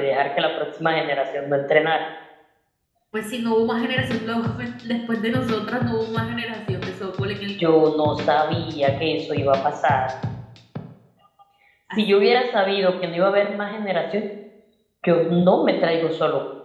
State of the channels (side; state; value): both; identical; correlation 1.00